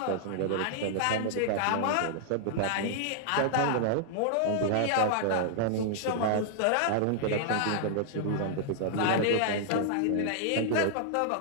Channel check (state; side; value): different; both; correlation -0.01